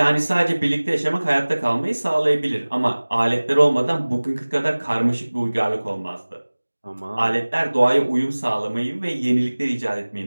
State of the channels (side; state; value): both; inverted; correlation -1.00